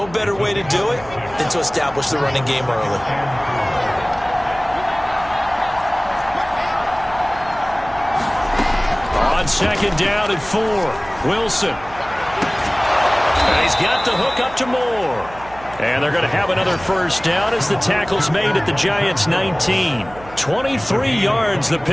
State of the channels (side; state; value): right; noise; hum, 19 dB below the sound